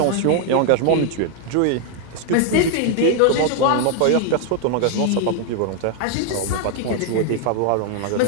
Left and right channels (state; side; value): different; both; correlation 0.00